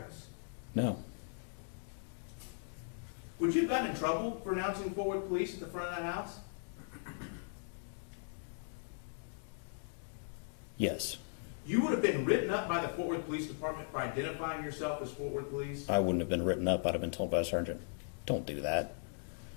No. Would you have gotten in trouble for announcing Fort Worth Police at the front of that house? Yes. You would have been written up by the Fort Worth Police Department for identifying yourself as Fort Worth Police? I wouldn't have been written up. I'd have been told by a sergeant, don't do that.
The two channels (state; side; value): silent; right; digital silence